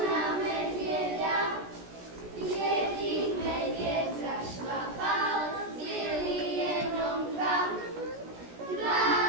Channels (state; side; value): late; left; 17 ms